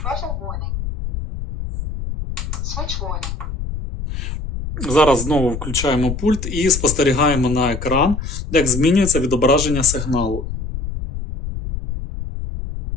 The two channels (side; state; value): left; noise; rumble, 6 dB below the sound